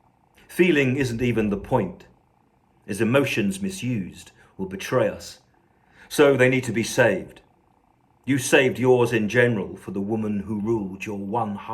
Feeling isn't even the point, as emotions misused will betray us. So they need to be saved. You saved yours in general for the woman who ruled your one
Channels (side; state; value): both; identical; correlation 1.00